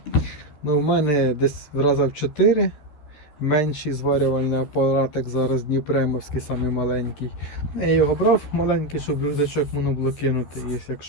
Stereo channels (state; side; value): late; right; 13 ms